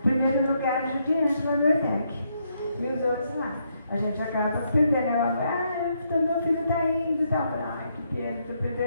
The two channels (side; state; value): both; inverted; correlation -0.76